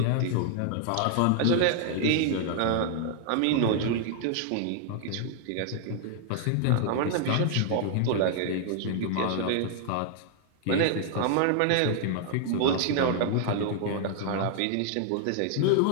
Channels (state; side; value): different; both; correlation -0.01